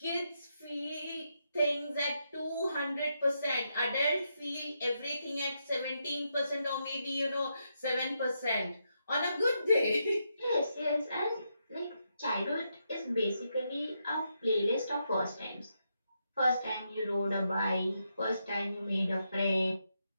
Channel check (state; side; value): inverted; both; correlation -0.82